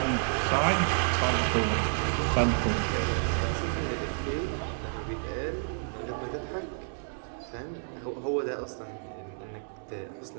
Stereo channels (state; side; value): silent; left; digital silence